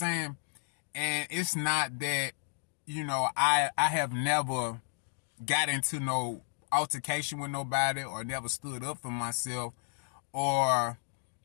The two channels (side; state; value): right; silent; digital silence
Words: And it's not that, I have never got into no altercation with nobody or never stood up for myself or